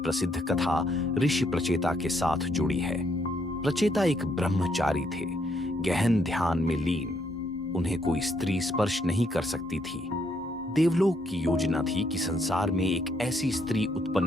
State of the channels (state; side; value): normal; both; correlation 0.72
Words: कथा ऋषि प्रचेता के साथ जुड़ी है। प्रचेता एक ब्रह्मचारी थे, गहन ध्यान में लीन। उन्हें कोई स्त्री स्पर्श नहीं कर सकती थी। देवलोक की योजना थी कि संसार में एक ऐसी स्त्री